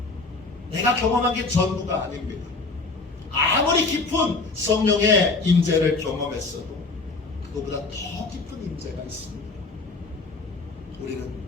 내가 경험한 게 전부가 아닙니다. 아무리 깊은 성령의 임재를 경험했어도 그것보다 더 깊은 임재가 있습니다. 우리는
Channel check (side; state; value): right; quieter; 3.8 dB